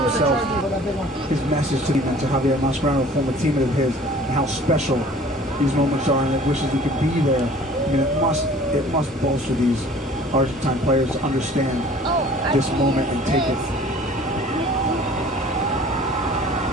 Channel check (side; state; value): both; normal; correlation 0.49